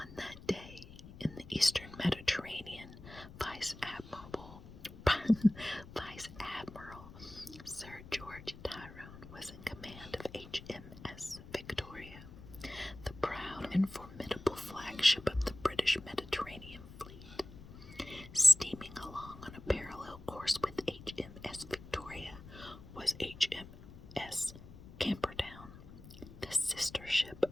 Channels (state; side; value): noise; left; rumble, 16 dB below the sound